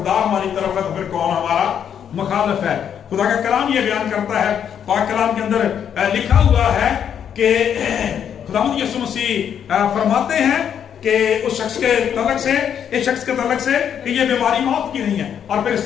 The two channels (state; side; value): quieter; right; 8.6 dB